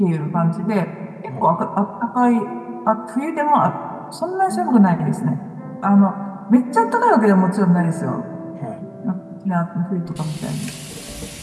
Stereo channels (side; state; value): both; identical; correlation 1.00